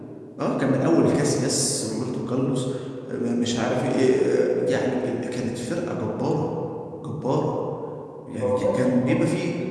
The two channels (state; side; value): identical; both; correlation 1.00